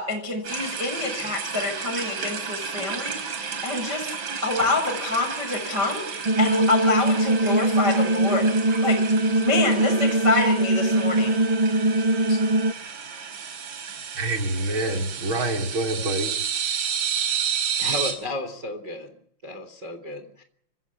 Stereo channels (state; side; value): late; left; 5.7 ms